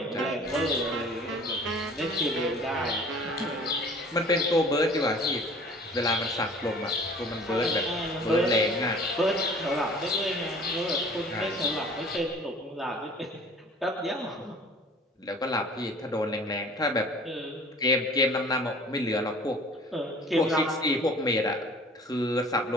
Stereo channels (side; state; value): both; normal; correlation 0.48